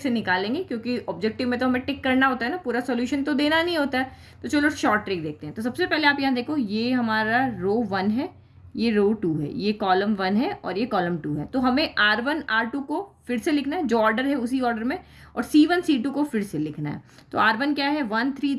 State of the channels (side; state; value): both; identical; correlation 1.00